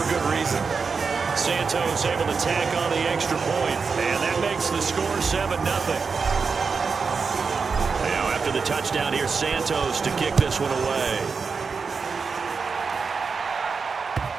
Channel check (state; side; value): quieter; left; 5.1 dB